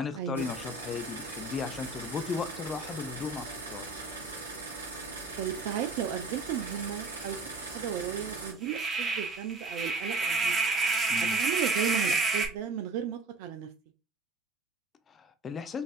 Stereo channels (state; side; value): quieter; left; 3.2 dB